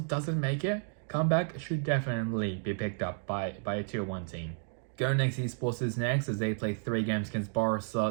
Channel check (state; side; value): silent; left; digital silence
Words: doesn't make it, comeback should definitely be picked up by a Tier 1 team. Go Next Esports is next, as they play 3 games against Barca,